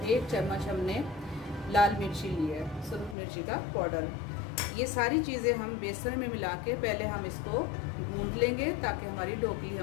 1 चम्मच हमने लाल मिर्ची ली है, सुरख मिर्ची का पाउडर। ये सारी चीज़ें हम बेसन में मिला के पहले हम इसको गूंद लेंगे ताकि हमारी ढोकली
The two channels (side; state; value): right; drops out; at 3.2 s